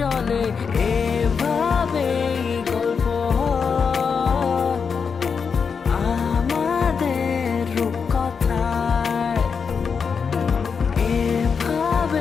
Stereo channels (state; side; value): quieter; right; 5.9 dB